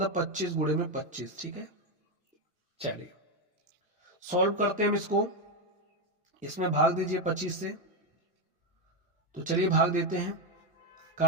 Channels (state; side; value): normal; both; correlation 0.07